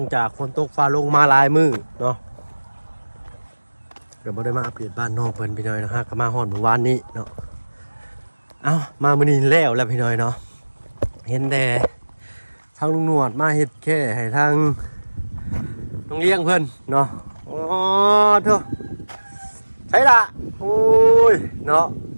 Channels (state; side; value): inverted; both; correlation -1.00